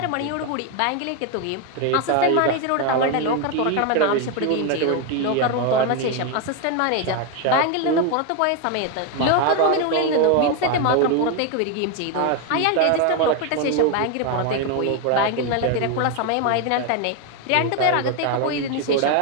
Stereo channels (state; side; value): different; both; correlation 0.01